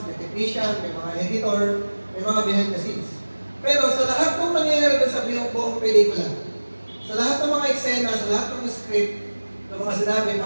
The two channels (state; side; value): inverted; both; correlation -1.00